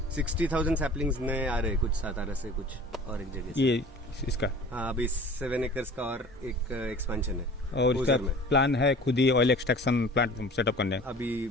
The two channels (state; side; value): normal; both; correlation 0.44